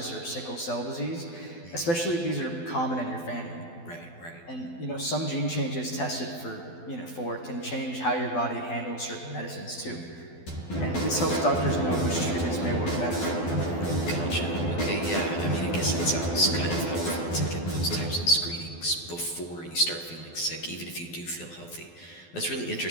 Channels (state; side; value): late; right; 12 ms